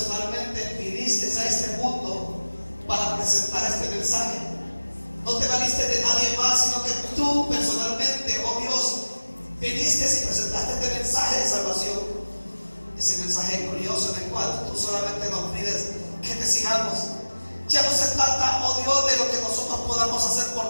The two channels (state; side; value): inverted; both; correlation -1.00